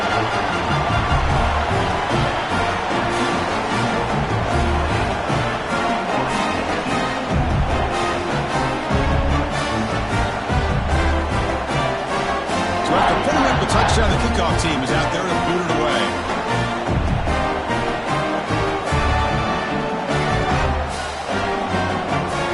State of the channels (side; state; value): both; identical; correlation 1.00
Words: So after putting up the touchdown, the kickoff team is out there to boot it away.